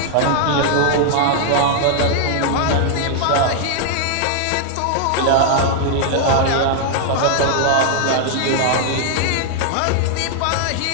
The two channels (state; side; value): different; both; correlation 0.00